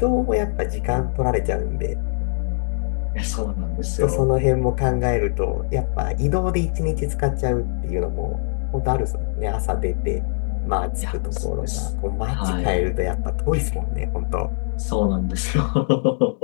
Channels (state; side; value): silent; right; digital silence